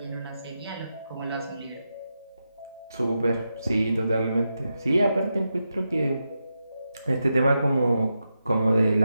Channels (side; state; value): both; inverted; correlation -0.87